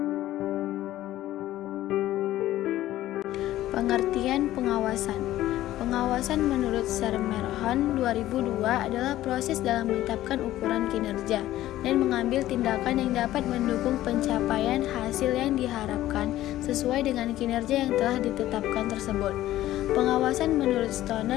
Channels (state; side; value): quieter; right; 14.5 dB